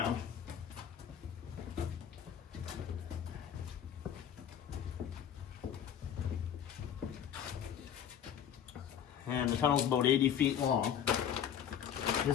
And the tunnel's about 80 feet long.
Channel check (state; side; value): quieter; right; 9.2 dB